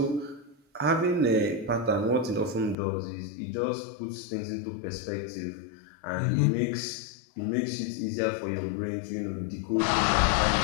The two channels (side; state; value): right; drops out; at 2.8 s